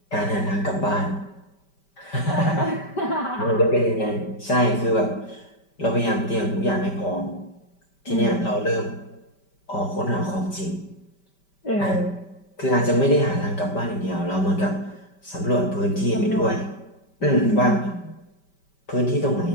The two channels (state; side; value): late; right; 5.1 ms